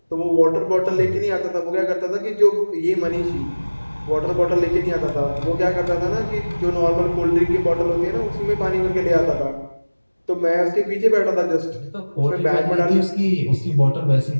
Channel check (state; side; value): inverted; both; correlation -1.00